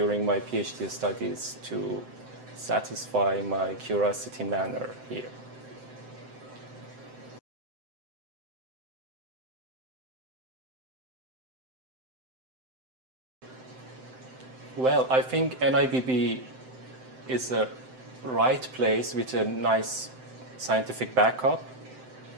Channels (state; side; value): late; left; 7.8 ms